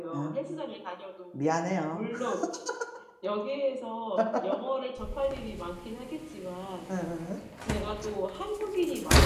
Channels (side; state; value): both; identical; correlation 1.00